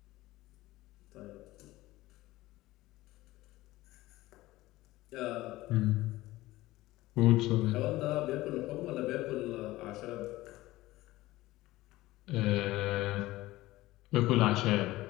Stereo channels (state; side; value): quieter; right; 17.8 dB